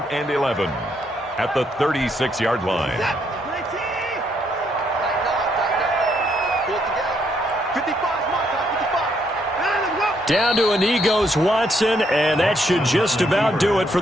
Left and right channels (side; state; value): both; normal; correlation 0.73